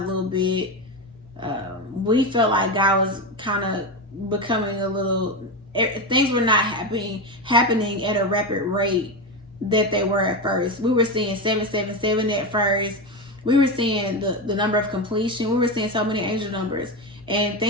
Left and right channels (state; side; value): normal; both; correlation 0.16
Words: a little bit. We felt like God was kind of becoming a little, things were not happening at a rapid rate that they were at first. We were seeing 777 at first. We were seeing the number of completion. We were seeing so many angel numbers. And